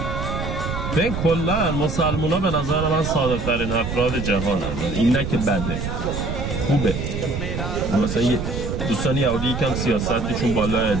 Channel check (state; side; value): noise; right; rumble, 4 dB below the sound